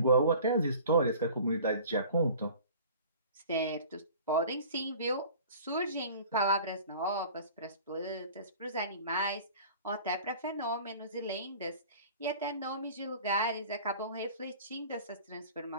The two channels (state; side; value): inverted; both; correlation -0.44